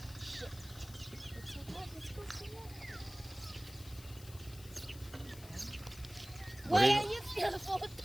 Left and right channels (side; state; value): left; noise; hiss, 18 dB below the sound